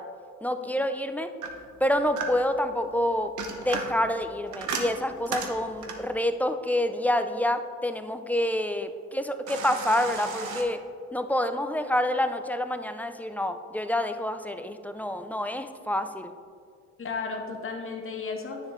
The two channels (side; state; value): both; normal; correlation 0.72